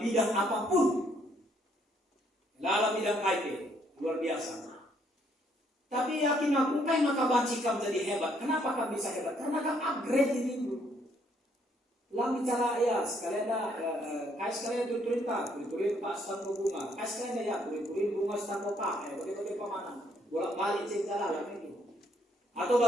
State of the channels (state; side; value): normal; both; correlation 0.69